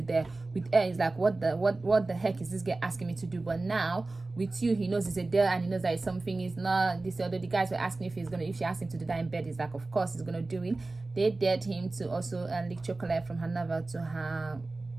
With Elle, he's like, what the heck is this guy asking me to do? But now with you, he knows it's a dare, and he knows that it's something is not this. Although the guys were asking if she asked him to do that in bed, he's like, of course he's gonna do it. They dared him to also lick chocolate from her navel to her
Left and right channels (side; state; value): left; quieter; 3.3 dB